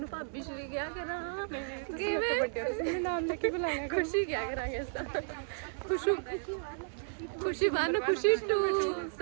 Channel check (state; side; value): silent; left; digital silence